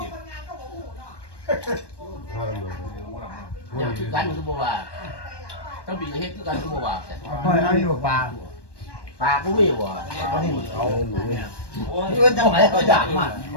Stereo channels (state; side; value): late; right; 1.2 ms